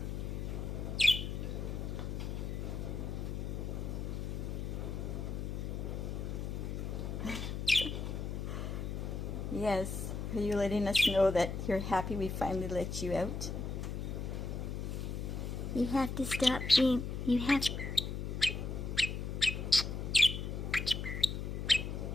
Yes, are you letting us know that you're happy we finally let you out? You have to stop being, you have...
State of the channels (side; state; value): left; noise; hum, 4 dB below the sound